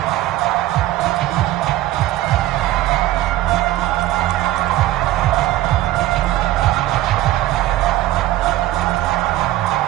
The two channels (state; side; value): quieter; left; 15.3 dB